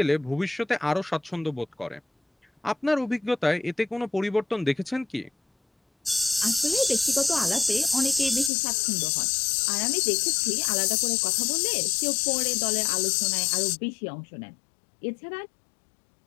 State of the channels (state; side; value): drops out; right; at 8.5 s